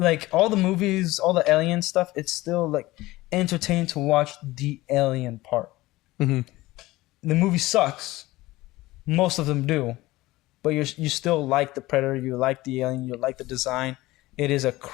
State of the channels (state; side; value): quieter; right; 18.7 dB